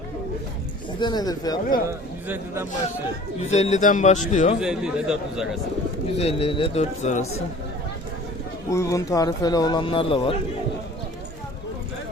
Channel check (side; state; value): both; normal; correlation 0.47